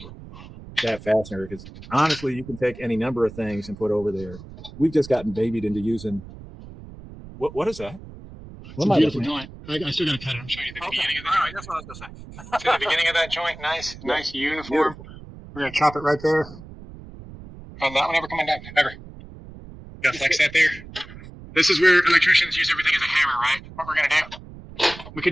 that fastener, because honestly, you can take any number of things and put over there. We've just gotten babied into using. What is that? It's a beautiful joint. I still gotta cut it. I'm showing you the beginning of the joint. That's what I was going to say. See the beginning of that joint? Nice uniform. We're gonna chop it right there. And that one ever coming down, ever. Gotta flex that there. This is where electricians use everything as a hammer, right? What we're gonna do. We could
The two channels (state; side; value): noise; right; rumble, 16 dB below the sound